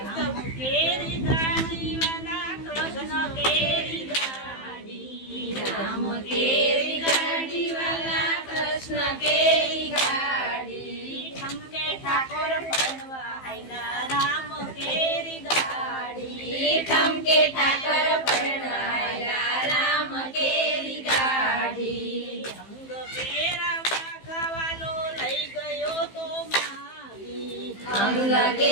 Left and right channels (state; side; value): late; right; 15 ms